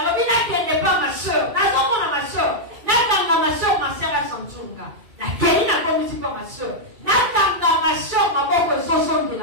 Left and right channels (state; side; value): late; left; 2.4 ms